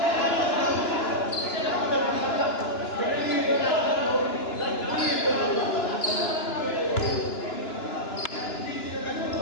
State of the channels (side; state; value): right; late; 2.9 ms